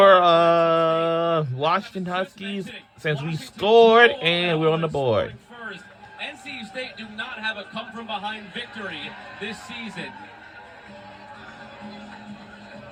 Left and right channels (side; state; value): both; identical; correlation 1.00